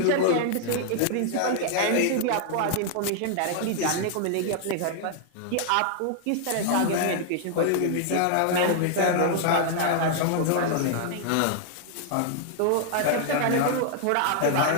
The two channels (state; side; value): different; both; correlation 0.00